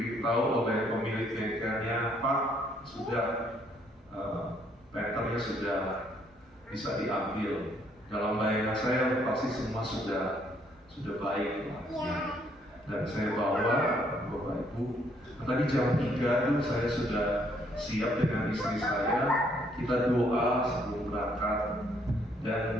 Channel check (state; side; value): normal; both; correlation 0.68